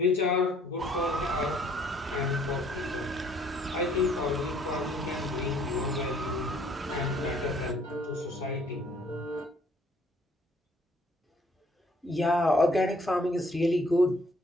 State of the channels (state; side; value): normal; both; correlation 0.61